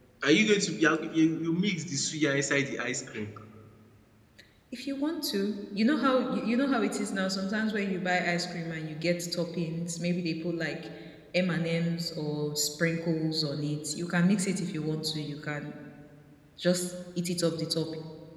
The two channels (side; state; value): both; identical; correlation 1.00